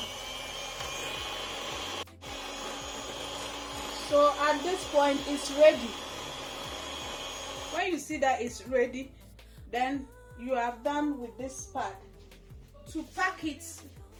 So at this point it's ready. When you see that it's ready, then you have done with this part. To pack it,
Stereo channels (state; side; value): identical; both; correlation 1.00